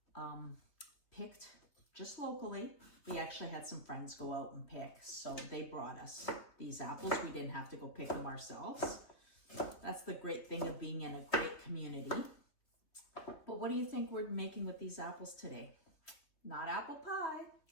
picked just locally. We actually had some friends go out and pick, so they brought us these apples. We didn't have to go pick them ourselves. That's the great thing of being in a great community. But what do you think we're making with these apples today? Not apple pie,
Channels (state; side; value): late; right; 3.3 ms